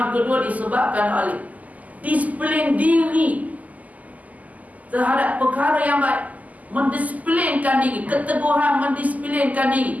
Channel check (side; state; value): left; late; 0.077 ms